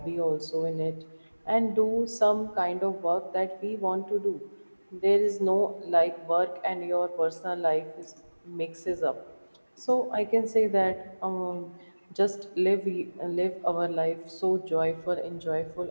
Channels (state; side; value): inverted; both; correlation -1.00